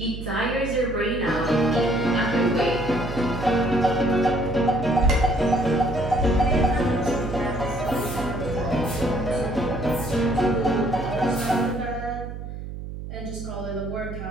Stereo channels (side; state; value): right; noise; hum, 9 dB below the sound